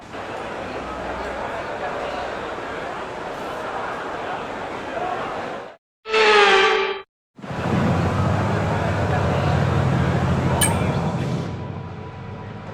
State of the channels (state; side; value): identical; both; correlation 1.00